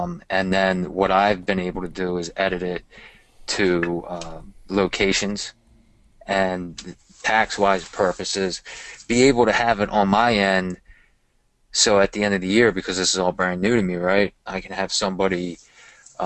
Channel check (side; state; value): both; identical; correlation 1.00